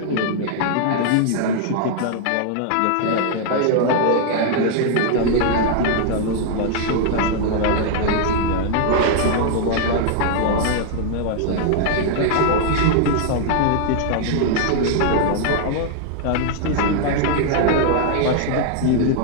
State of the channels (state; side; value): different; both; correlation 0.00